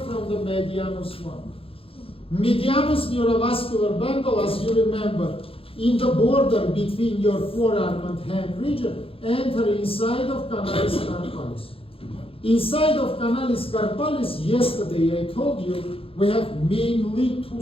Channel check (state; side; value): late; right; 0.27 ms